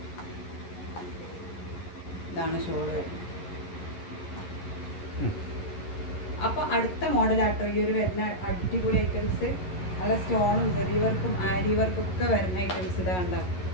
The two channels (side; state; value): right; late; 11 ms